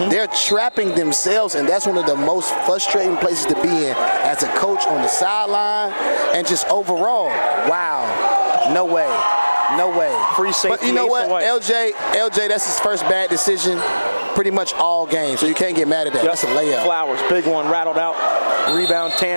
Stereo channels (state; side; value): inverted; both; correlation -1.00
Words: They're trapping themselves, and that's one of the most frustrating places to be in as a coach on the sideline and just overall. Wow. No way. No way. Free safety. But you know what? LJ, that's his first bad decision pretty much all game, so you can't get mad at that. Yep. That's a layup. Flowers, big one, rattled out. Rebound,